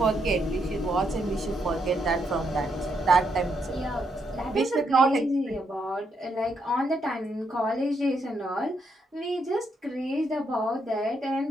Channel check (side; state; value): both; normal; correlation 0.78